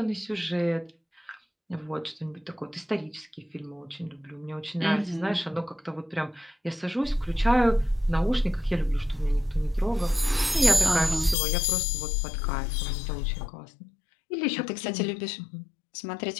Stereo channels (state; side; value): drops out; right; at 11.4 s